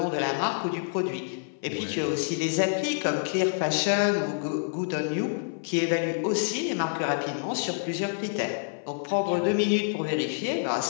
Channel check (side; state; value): right; silent; 60 dB below the other